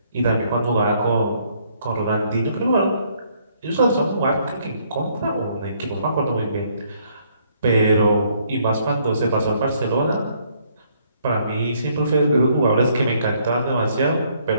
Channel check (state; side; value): inverted; both; correlation -0.68